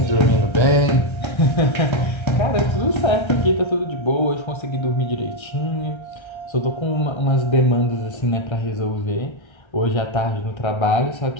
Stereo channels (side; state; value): right; late; 1.3 ms